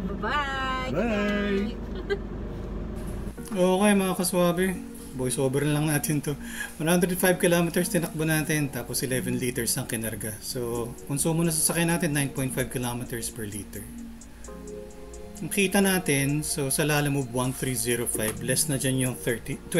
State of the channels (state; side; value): identical; both; correlation 1.00